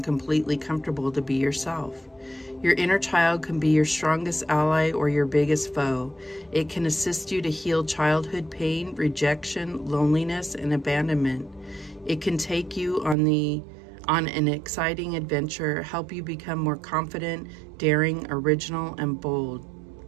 completely comfortable to be yourself? Your inner child can be your strongest ally or your biggest foe. It can assist you to heal childhood pain, rejection, loneliness, and abandonment. It can take you on an exciting adventure, help you become more confident, daring, original, and bold.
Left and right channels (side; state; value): left; drops out; at 13.2 s